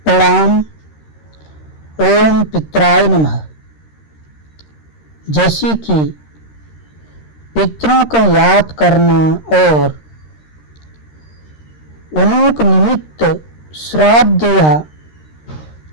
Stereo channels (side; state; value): right; late; 13 ms